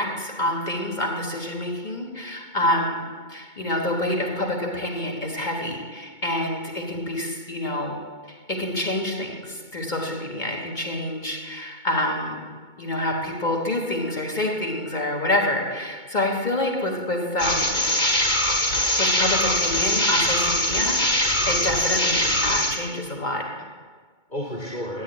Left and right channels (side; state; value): right; late; 2.2 ms